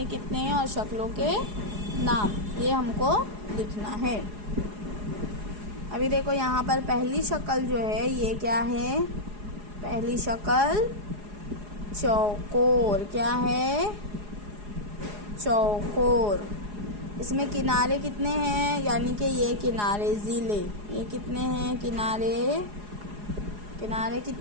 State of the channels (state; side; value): late; left; 4.8 ms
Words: कितने हैं और शक्लों के नाम, ये हमको लिखना है। अभी देखो यहाँ पर पहली शक्ल जो है ये क्या है, पहली शक्ल चौकोर। क्या है, चौकोर। इसमें किनारे कितने हैं, यानी कि ये किनारे ज़िले, ये कितने हैं किनारे, किनारे